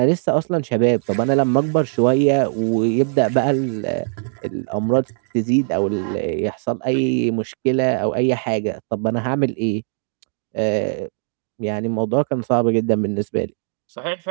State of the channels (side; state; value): left; silent; digital silence